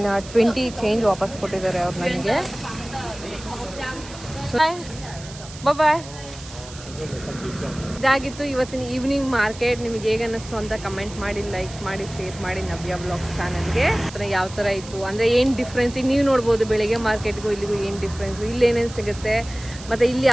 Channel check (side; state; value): right; noise; hiss, 16 dB below the sound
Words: ಚೇಂಜ್ ವಾಪಸ್ ಕೊಟ್ಟಿದ್ದಾರೆ ಅವ್ರು ನನಗೆ. ಬಾಯ್. ಇದಾಗಿತ್ತು ಇವತ್ತಿನ ಈವ್ನಿಂಗ್ ಮಾರ್ಕೆಟ್. ನಿಮಗೆ ಹೇಗೆ ಅನ್ನಿಸ್ತು ಅಂತ ಕಮೆಂಟ್ ಮಾಡಿ, ಲೈಕ್ ಮಾಡಿ, ಶೇರ್ ಮಾಡಿ ನವ್ಯ ಬ್ಲಾಗ್ಸ್ ಚಾನಲ್ಗೆ. ಯಾವ ಥರ ಇತ್ತು ಅಂದರೆ ಏನು ಡಿಫ್ರೆನ್ಸ್ ಈಗ ನೀವು ನೋಡ್ಬೋದು. ಬೆಳಗ್ಗೆ ಮಾರ್ಕೆಟ್ಗೂ ಇಲ್ಲಿಗೂ ಏನು ಡಿಫ್ರೆನ್ಸು, ಇಲ್ಲಿ ಏನೇನು ಸಿಗುತ್ತೆ ಮತ್ತು ಇಲ್ಲಿ